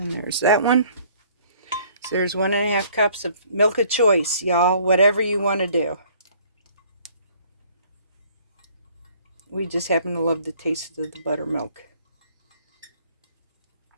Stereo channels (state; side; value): inverted; both; correlation -0.58